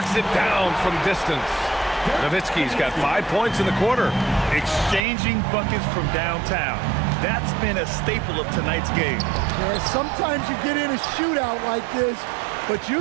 it down from distance. Nowitzki's got 5 points in the quarter. Exchanging buckets from downtown. That's been a staple of tonight's game. Yeah, sometimes you get in a shootout like this, but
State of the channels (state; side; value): drops out; left; at 5.0 s